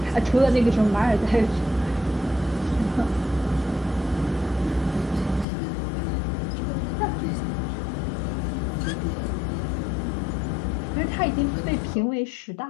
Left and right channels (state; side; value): drops out; right; at 5.5 s